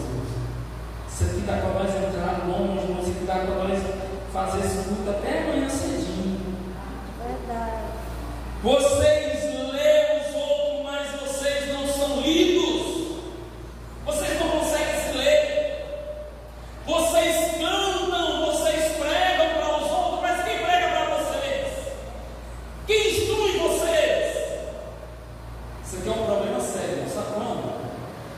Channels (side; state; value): both; identical; correlation 1.00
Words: Isso aqui dá para nós entrar longe, isso aqui dá para nós fazer esse culto até amanhã cedinho. Verdade. Vocês lêem os outros, mas vocês não são lidos. Vocês não conseguem se ler. Vocês cantam, vocês pregam para os outros, mas quem prega para vocês? Quem instrui vocês? Isso aqui é um problema sério, sabe quando?